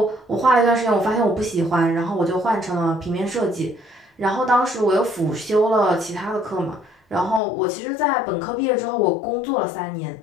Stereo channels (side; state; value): right; drops out; at 7.4 s